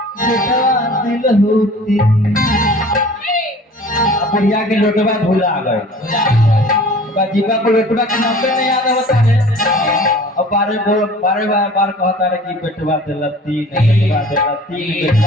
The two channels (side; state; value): both; normal; correlation 0.46